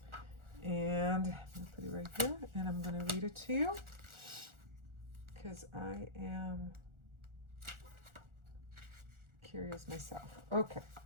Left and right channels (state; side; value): late; left; 1.4 ms